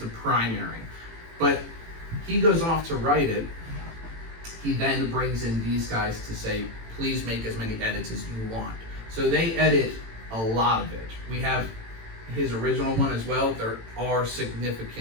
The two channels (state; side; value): late; left; 18 ms